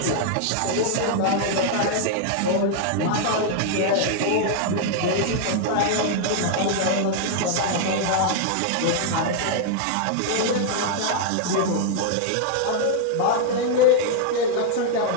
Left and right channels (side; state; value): both; different; correlation 0.00